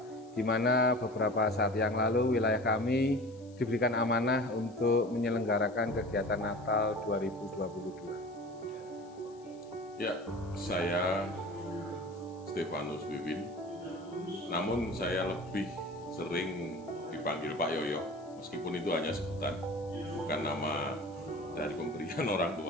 di mana beberapa saat yang lalu wilayah kami diberikan amanah untuk menyelenggarakan kegiatan Natal 2022. Ya, saya Stefanus Wiwin, namun saya lebih sering dipanggil Pak Yoyo, meskipun itu hanya sebutan, bukan nama dari pemberian orang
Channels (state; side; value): noise; left; hiss, 29 dB below the sound